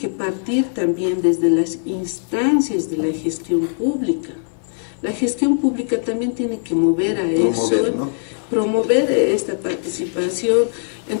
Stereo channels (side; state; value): right; silent; 58 dB below the other